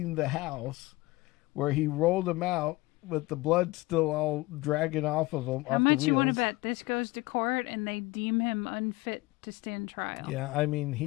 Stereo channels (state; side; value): quieter; right; 21.1 dB